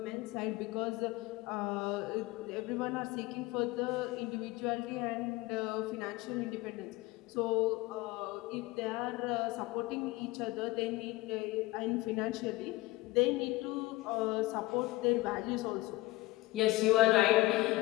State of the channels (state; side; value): quieter; right; 19.6 dB